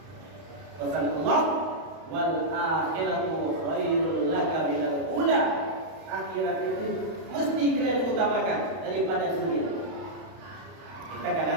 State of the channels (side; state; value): left; late; 32 ms